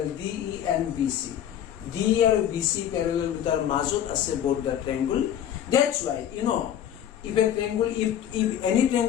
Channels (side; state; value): right; quieter; 10.3 dB